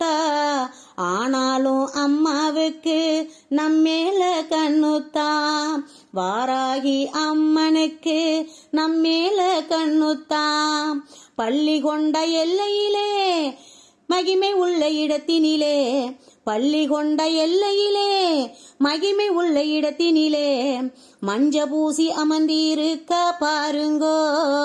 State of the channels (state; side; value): identical; both; correlation 1.00